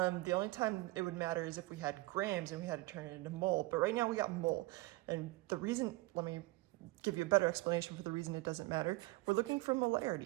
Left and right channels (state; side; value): quieter; left; 21.1 dB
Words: only time it would matter is if we had grams and we had to turn it into mole, but right now we got mole. And the reason, let me give you a better explanation for the reason it doesn't matter. We're looking for